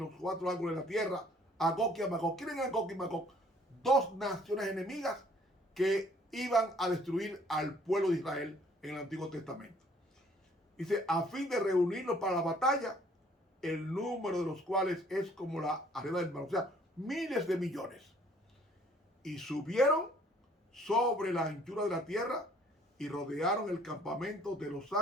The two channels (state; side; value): normal; both; correlation 0.59